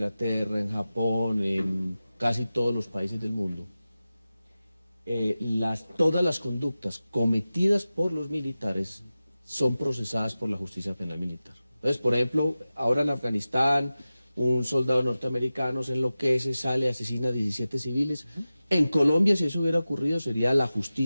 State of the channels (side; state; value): both; inverted; correlation -0.95